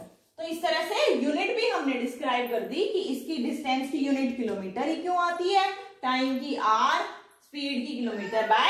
तो इस तरह से यूनिट भी हमने डिस्क्राइब कर दी कि इसकी डिस्टेंस की यूनिट किलोमीटर ही क्यों आती है, टाइम की आर, स्पीड की kilometre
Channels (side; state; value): both; identical; correlation 1.00